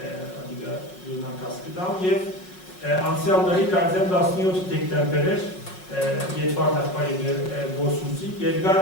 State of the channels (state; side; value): late; right; 5.5 ms